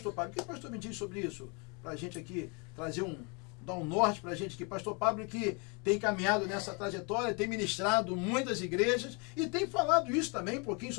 Pablo, o que o pastor me diz sobre isso? Para a gente aqui trazer dar um norte para a gente aqui. Pastor Pablo, que tem caminhado nessa trajetória, tem ministrado muitas igrejas e tem falado isso também, um pouquinho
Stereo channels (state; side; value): quieter; right; 32.5 dB